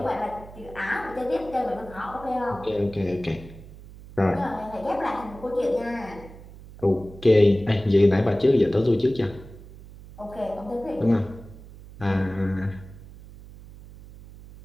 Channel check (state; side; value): noise; right; hum, 18 dB below the sound